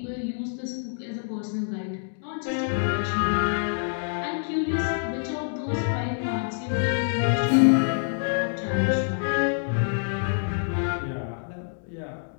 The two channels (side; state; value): right; silent; digital silence